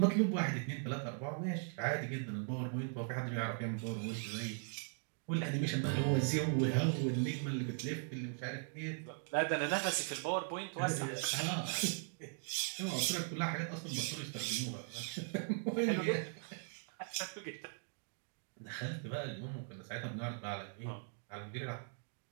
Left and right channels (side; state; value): left; silent; 52 dB below the other